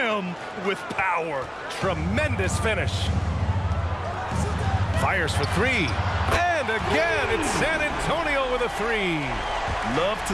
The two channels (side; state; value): both; identical; correlation 1.00